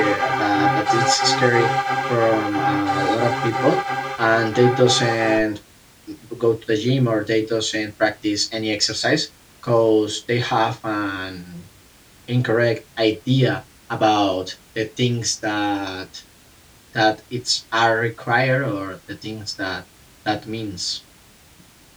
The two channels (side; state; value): both; identical; correlation 1.00